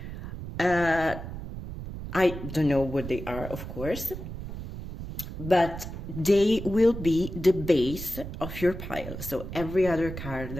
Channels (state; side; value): noise; right; rumble, 9 dB below the sound